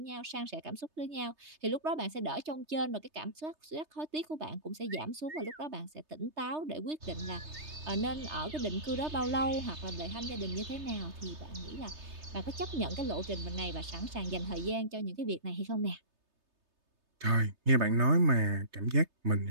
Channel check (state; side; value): late; left; 3.3 ms